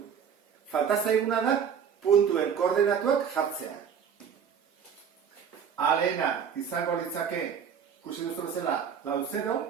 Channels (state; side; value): quieter; left; 7.4 dB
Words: Falta zaiguna da puntuen koordenatuak jartzea. A lehena izango litzake, ikusi duzu bezala, lau 0,